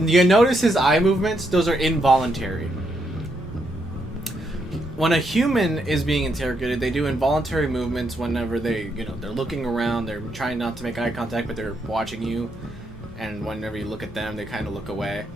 his eye movements? Those are involuntary. When a human is being interrogated, they do involuntary movements whenever they're looking around, they're trying not to make eye contact, but they're watching you. And whenever you look at them, they kind of look away.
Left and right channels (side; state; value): both; normal; correlation 0.78